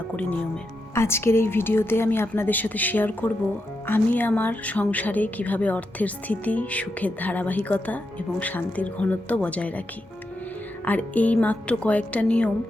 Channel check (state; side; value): normal; both; correlation 0.85